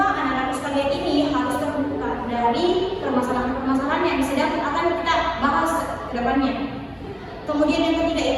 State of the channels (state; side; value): identical; both; correlation 1.00